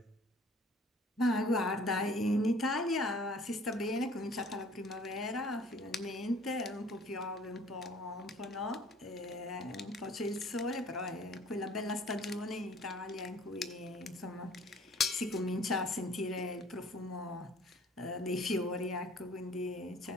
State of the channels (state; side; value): normal; both; correlation 0.52